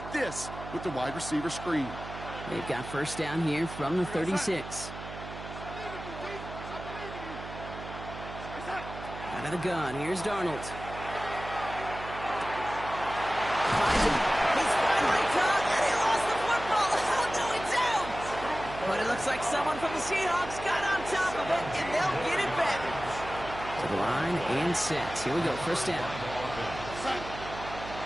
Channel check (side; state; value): right; noise; hum, 11 dB below the sound